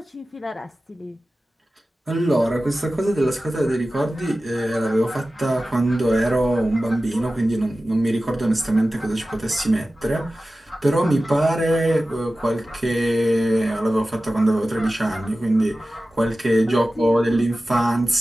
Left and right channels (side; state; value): both; normal; correlation 0.95